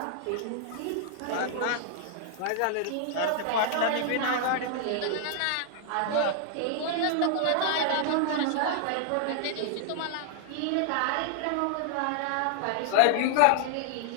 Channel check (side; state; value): both; different; correlation -0.01